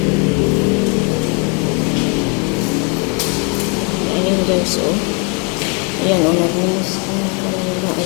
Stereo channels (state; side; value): quieter; right; 34.8 dB